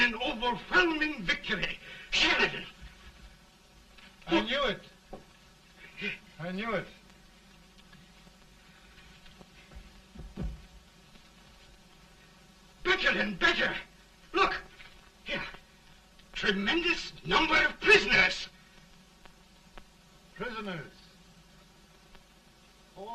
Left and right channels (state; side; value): identical; both; correlation 1.00